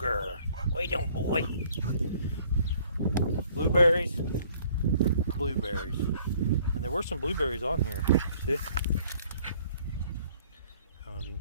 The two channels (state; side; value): inverted; both; correlation -0.59